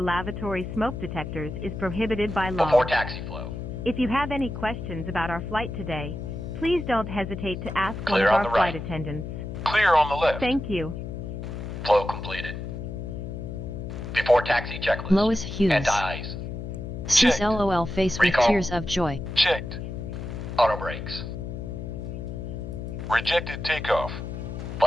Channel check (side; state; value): left; noise; hum, 7 dB below the sound